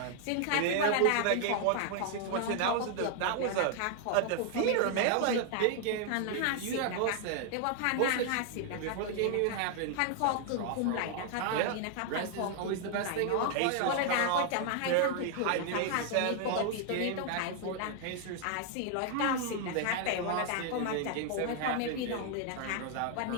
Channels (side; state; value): both; different; correlation 0.00